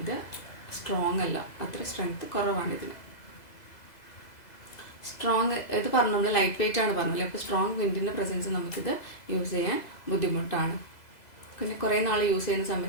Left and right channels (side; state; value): right; late; 2.0 ms